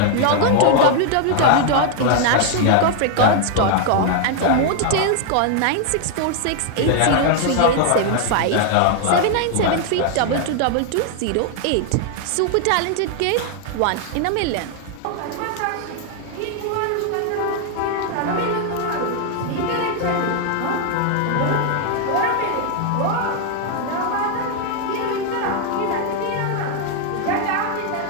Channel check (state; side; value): different; both; correlation 0.00